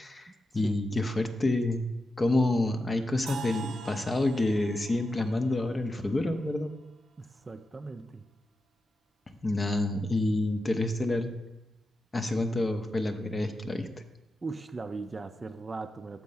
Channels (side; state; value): both; normal; correlation 0.89